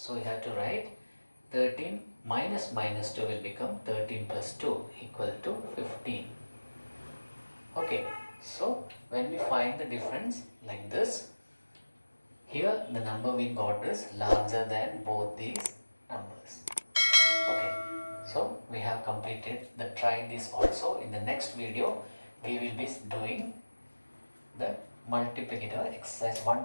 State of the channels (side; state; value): both; inverted; correlation -1.00